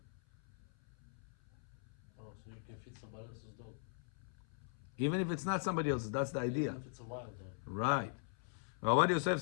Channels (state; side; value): silent; right; 51 dB below the other